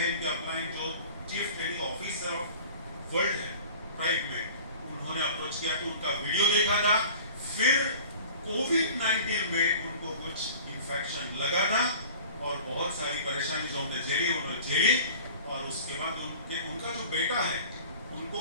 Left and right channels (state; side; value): inverted; both; correlation -0.42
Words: इनके अपलाइन जो chief training officer of world है प्राइड में, उन्होंने अप्रोच किया तो उनका वीडियो देखा था। फिर कोविड-19 में उनको कुछ इन्फेक्शन लगा था और बहुत सारी परेशानी जो हमने झेली उन्होंने झेली। और उसके बाद उनका जो बेटा है उनको